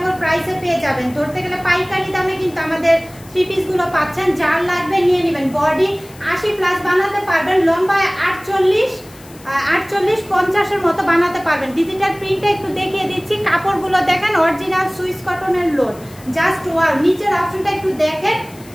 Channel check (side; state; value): left; noise; hiss, 23 dB below the sound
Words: প্রাইসে পেয়ে যাবেন। ধরতে গেলে পাইকারি দামে কিন্তু আমাদের থ্রি পিসগুলো পাচ্ছেন। যার লাগবে নিয়ে নেবেন। বডি 80+ বানাতে পারবেন, লম্বায় 48-50-এর মতো বানাতে পারবেন। ডিজিটাল প্রিন্টে একটু দেখিয়ে দিচ্ছি। কাপড়গুলো দেখেন, অরিজিনাল সুইস কটনের লোন। Just wow. নিচের অপশনটা একটু দেখেন,